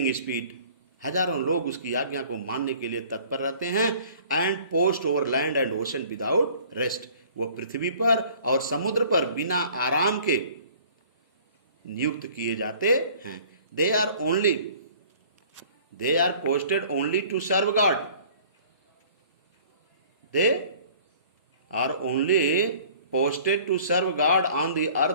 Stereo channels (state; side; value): inverted; both; correlation -0.51